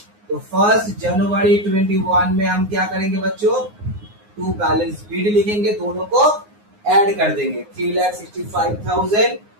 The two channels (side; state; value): left; late; 9.6 ms